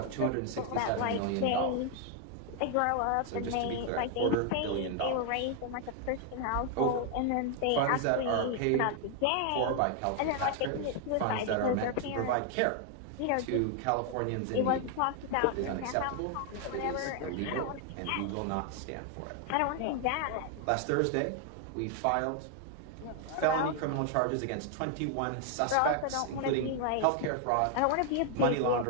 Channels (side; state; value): both; different; correlation 0.00